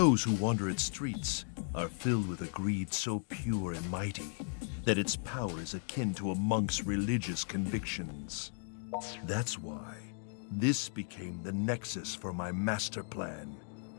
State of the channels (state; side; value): silent; right; 54 dB below the other